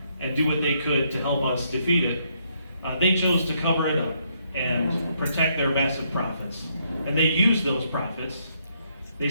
and do what they could to help us defeat it, they chose to cover it up and protect their massive profits. And they use those profits. They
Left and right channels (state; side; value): inverted; both; correlation -0.74